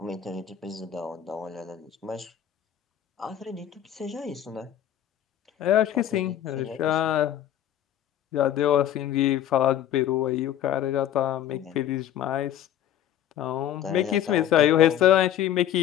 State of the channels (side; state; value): right; quieter; 10.9 dB